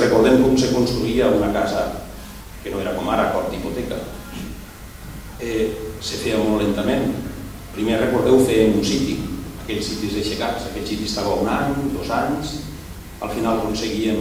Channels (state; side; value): identical; both; correlation 1.00